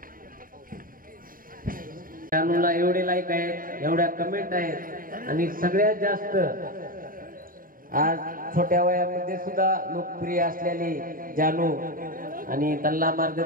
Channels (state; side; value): late; left; 0.41 ms